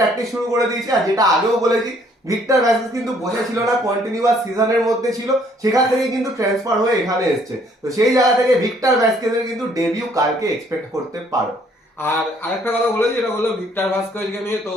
শুরু করে দিয়েছে। আর যেটা আগেও বলেছি, ভিক্টর ভ্যাসকেজ কিন্তু বসেছিল না, কন্টিনিউয়াস সিজনের মধ্যে ছিল, সেখান থেকে কিন্তু ট্রান্সফার হয়ে এখানে এসছে। তো সেই জায়গা থেকে ভিক্টর ভ্যাসকেজের কিন্তু ডেবিউ কালকে এক্সপেক্ট করতে পারো। আর আরেকটা কথা বলেছি, যেটা বললো ভিক্টর ভাস্কোভিচকে নিয়ে, তো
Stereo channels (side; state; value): both; normal; correlation 0.63